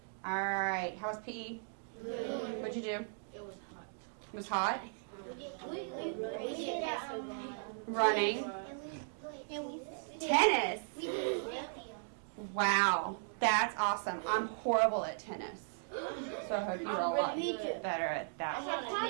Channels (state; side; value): silent; left; digital silence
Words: All right. How was PE? Good. What'd you do? It was hot. It was hot? We did Running. Tennis. Wow. That's awesome. I'm horrible at tennis. So I hope you're a lot better at that.